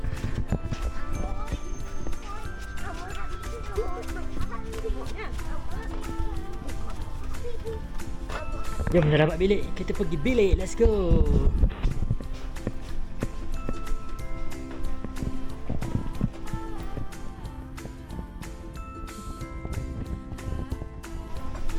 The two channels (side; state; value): both; identical; correlation 1.00